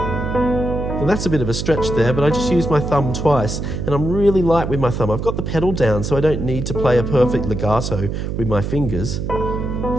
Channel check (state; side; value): noise; right; hum, 4 dB below the sound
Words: That's a bit of a stretch there, but I just used my thumb twice, and I'm really light with my thumb. I've got the pedal down, so I don't need to play a perfect legato with my fingers.